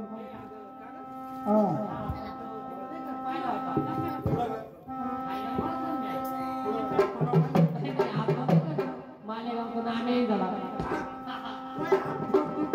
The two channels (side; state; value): both; identical; correlation 1.00